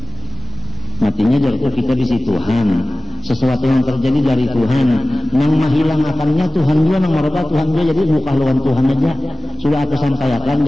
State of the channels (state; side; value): normal; both; correlation 0.97